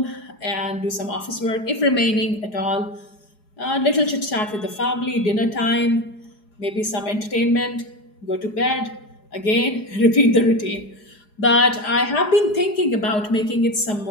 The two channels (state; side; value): late; right; 4.8 ms